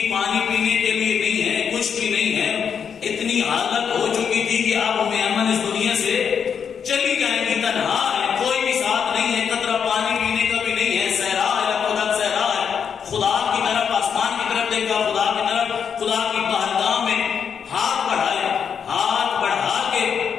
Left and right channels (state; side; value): quieter; right; 7.1 dB